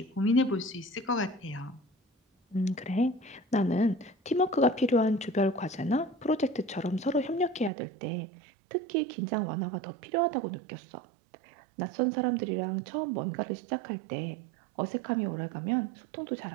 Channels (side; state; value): left; drops out; at 7.7 s